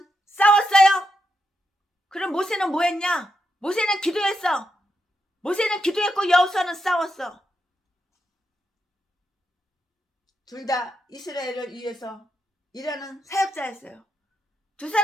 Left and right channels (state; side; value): normal; both; correlation 0.84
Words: 싸웠어요. 그럼 모세는 뭐 했냐? 모세는 기도했어. 모세는 기도했고 여호수아는 싸웠어. 둘 다 이스라엘을 위해서 일하는 사역자였어요. 두